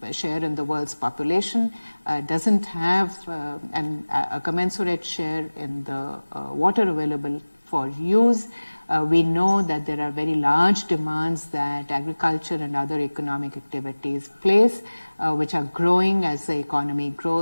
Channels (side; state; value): both; inverted; correlation -1.00